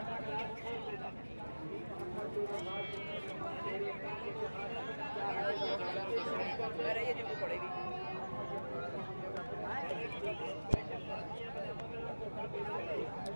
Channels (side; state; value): both; inverted; correlation -1.00